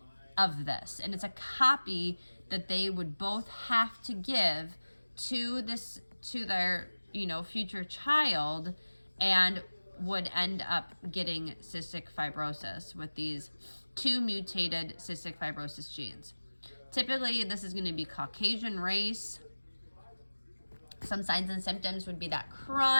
of this, and it's a copy that they would both have to give to their future child, and would end up getting cystic fibrosis with these 2 mutated cystic fibrosis genes. Typically, this is going to be Caucasian race. Some signs and symptoms would be that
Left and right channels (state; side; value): inverted; both; correlation -1.00